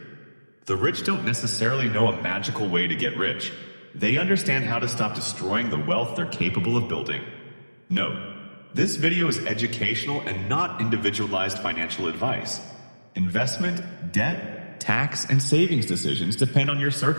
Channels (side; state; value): both; inverted; correlation -1.00